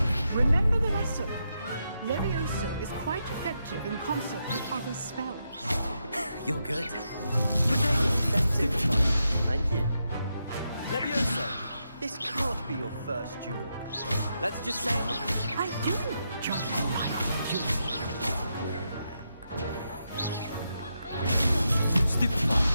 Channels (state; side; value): inverted; both; correlation -0.84